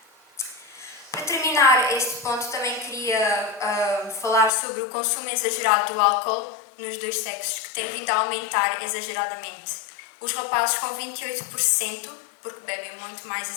Para terminar este ponto, também queria falar sobre o consumo exagerado do álcool nos dois sexos, que tem vindo a aumentar exageradamente. Os rapazes com 28%, porque bebem muito mais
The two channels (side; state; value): right; drops out; at 4.5 s